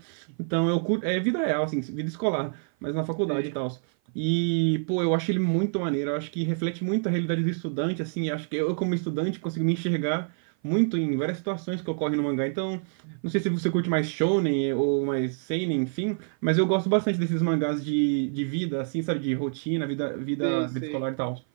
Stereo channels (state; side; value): silent; left; 55 dB below the other